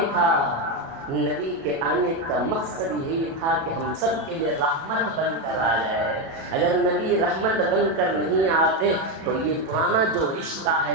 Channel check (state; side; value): late; left; 37 ms